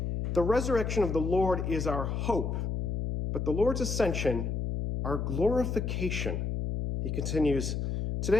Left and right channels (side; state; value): left; noise; hum, 2 dB below the sound